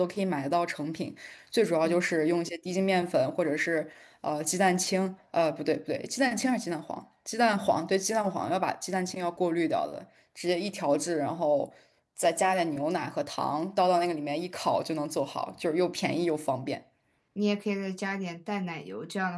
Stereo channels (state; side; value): identical; both; correlation 1.00